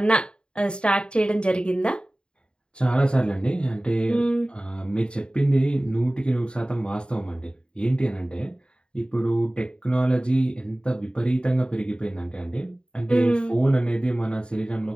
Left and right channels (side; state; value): right; late; 0.051 ms